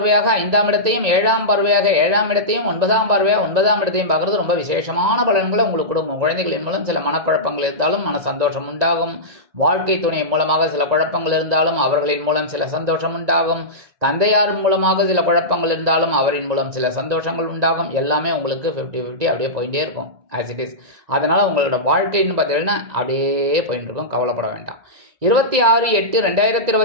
5ஆம் இடத்தையும் 7ஆம் பார்வையாக 7ஆம் இடத்தையும் 9ஆம் பார்வையாக 9ஆம் இடத்தையும் பார்க்கறது ரொம்ப விசேஷமான பலன்களை உங்களுக்கு கொடுக்கும். குழந்தைகளின் மூலம் சில மனக்குழப்பங்கள் இருந்தாலும் மன சந்தோஷம் உண்டாகும். வாழ்க்கை துணை மூலமாக சில குழப்பங்கள் இருந்தாலும் அவர்களின் மூலம் சில சந்தோஷம் உண்டாகும். தந்தையார் மூலமாக சில குழப்பங்கள் இருந்தாலும் அவரின் மூலம் சில சந்தோஷங்கள் உண்டாகும். எல்லாமே உங்களுக்கு 50-50 அப்படியே போயிட்டே இருக்கும் ஆஸ் இட் இஸ். அதனால் உங்களோட வாழ்க்கைன்னு பார்த்தீங்கன்னா அப்படியே போயிட்டு இருக்கும், கவலைப்பட வேண்டாம்.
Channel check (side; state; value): left; late; 1.9 ms